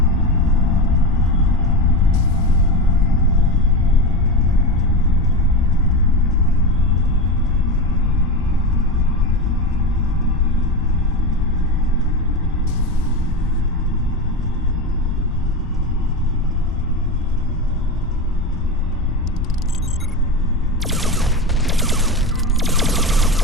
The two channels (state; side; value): normal; both; correlation 0.20